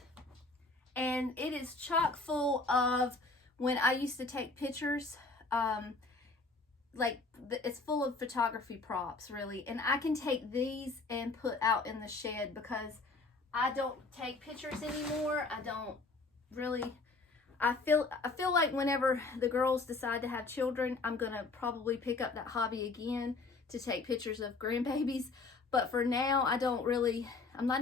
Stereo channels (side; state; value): right; quieter; 3.7 dB